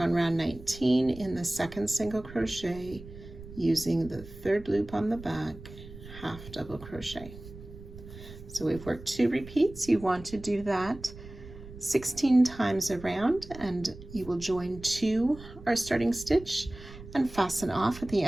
round 19 in the second single crochet using the third loop on the back, half double crochet. So we've worked 2 repeats. You want to do that 16 times around, and you will join 2 our starting stitch and fasten off at the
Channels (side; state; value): right; noise; rumble, 16 dB below the sound